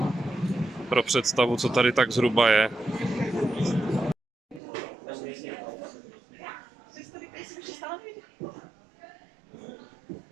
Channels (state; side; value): drops out; left; at 4.6 s